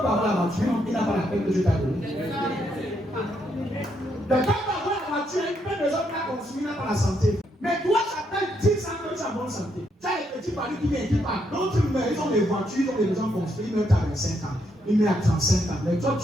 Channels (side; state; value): both; normal; correlation 0.77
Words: la voiture, il n'a pas la peine que Dieu t'a donnée. Quelqu'un peut avoir la voiture, il peut les autres la consommer, il n'a pas la santé. Mais toi, ça fait 10 ans que tu as bonne santé. Tu as les petits paris qui viennent, qui partent. D'autres, ils ont des voitures, ils ont des maisons construites, ils mettent à 25 ans, ils mettent à 35 ans. Mais toi,